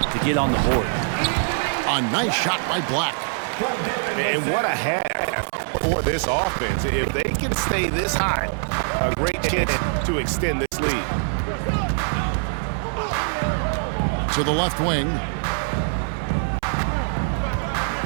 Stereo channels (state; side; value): silent; left; 63 dB below the other